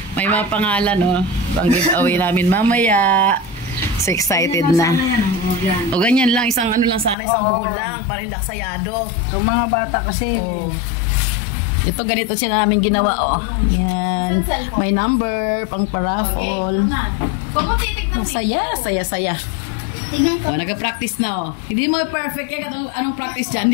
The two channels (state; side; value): drops out; right; at 7.2 s